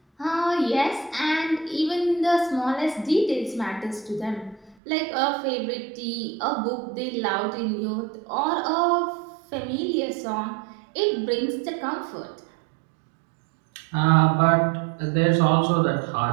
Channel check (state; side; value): drops out; left; at 4.8 s